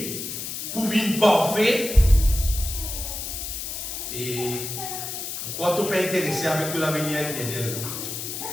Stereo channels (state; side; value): noise; left; hiss, 6 dB below the sound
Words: pour vivre parfait, et pourquoi tu n'es pas intéressé avec l'avenir éternel?